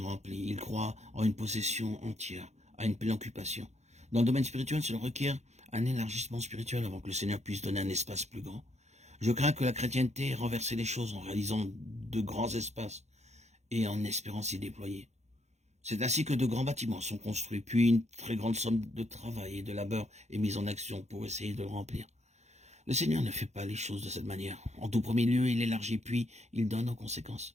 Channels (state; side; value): late; left; 0.33 ms